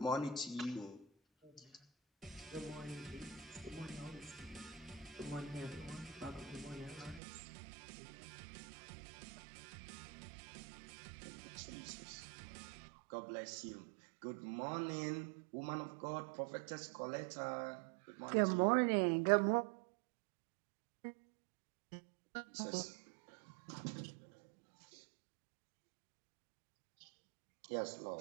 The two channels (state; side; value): drops out; left; at 7.2 s